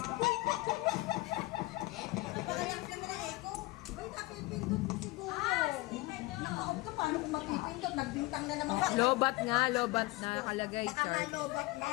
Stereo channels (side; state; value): right; quieter; 21.0 dB